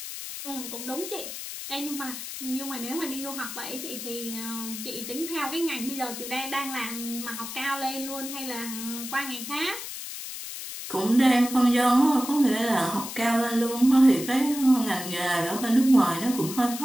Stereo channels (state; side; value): noise; left; hiss, 8 dB below the sound